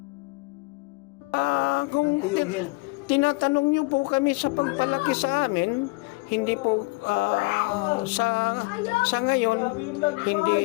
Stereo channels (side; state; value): right; quieter; 25.6 dB